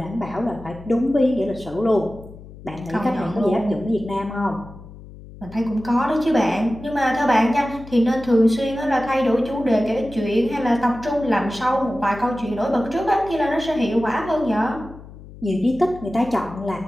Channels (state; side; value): noise; left; hum, 17 dB below the sound